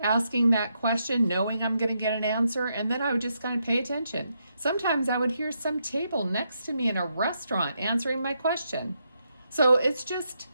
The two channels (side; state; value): both; inverted; correlation -0.80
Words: asking that question, knowing I'm going to get an answer, and then I would just kind of pay attention. Sometimes I would hear some table next to me in a restaurant answering my question. So it's just,